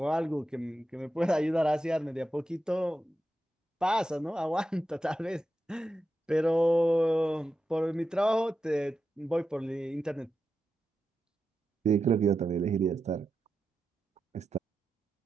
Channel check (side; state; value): both; normal; correlation 0.89